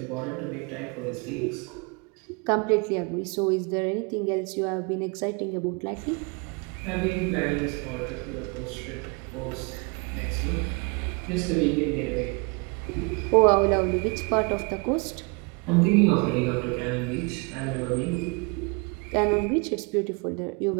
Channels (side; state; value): left; quieter; 31.4 dB